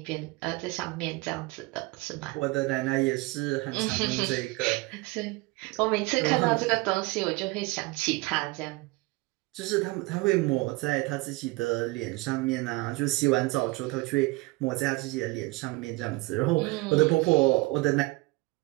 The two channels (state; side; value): quieter; left; 23.4 dB